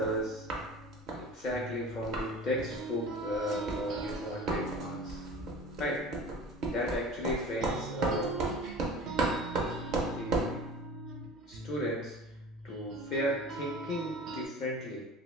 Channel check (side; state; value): both; normal; correlation 0.38